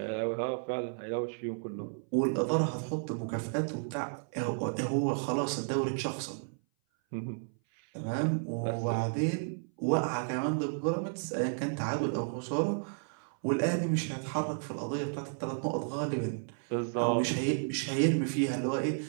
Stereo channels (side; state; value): left; silent; 56 dB below the other